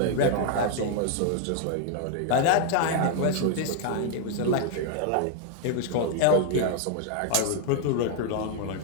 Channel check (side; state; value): both; different; correlation 0.00